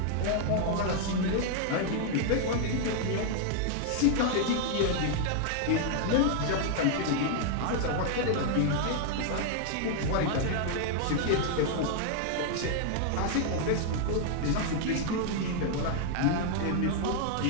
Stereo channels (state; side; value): different; both; correlation 0.00